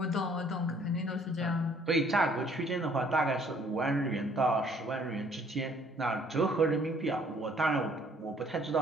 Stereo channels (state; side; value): normal; both; correlation 0.61